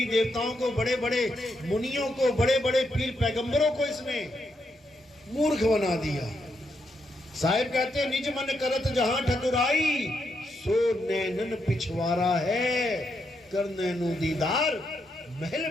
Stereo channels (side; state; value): both; normal; correlation 0.80